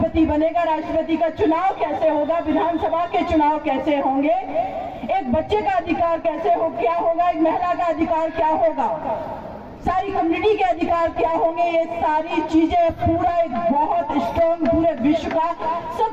बनेगा, राष्ट्रपति का चुनाव कैसे होगा, विधानसभा के चुनाव कैसे होंगे, एक बच्चे का अधिकार कैसे हो क्या होगा, एक महिला का अधिकार क्या होगा, सारी कम्युनिटी के अधिकार क्या होंगे, ये सारी चीजें पूरा एक बहुत स्ट्रॉन्ग पूरे विश्व का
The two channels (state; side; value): identical; both; correlation 1.00